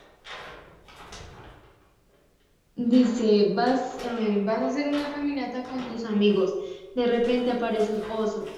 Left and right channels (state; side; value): identical; both; correlation 1.00